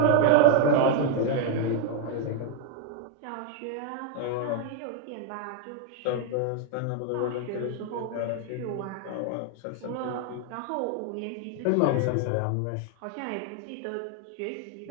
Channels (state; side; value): different; both; correlation 0.00